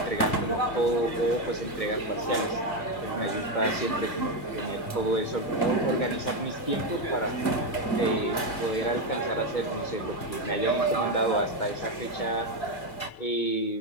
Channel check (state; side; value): late; right; 2.2 ms